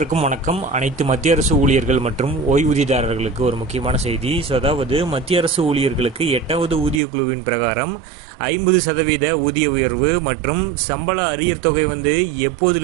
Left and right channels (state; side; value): drops out; left; at 7.0 s